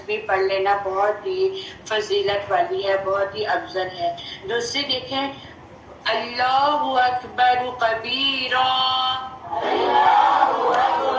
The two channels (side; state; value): both; identical; correlation 1.00